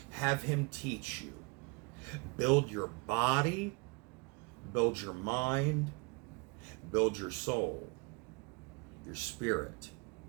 Have him teach you. Build your body, build your mind, build your soul, your spirit,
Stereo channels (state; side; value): quieter; left; 29.1 dB